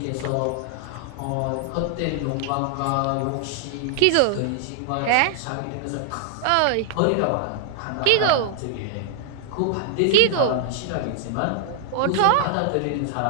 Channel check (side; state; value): both; different; correlation 0.00